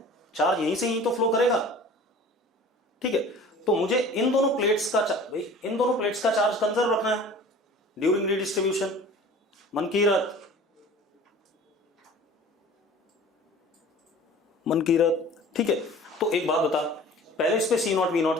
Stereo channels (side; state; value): both; normal; correlation 0.44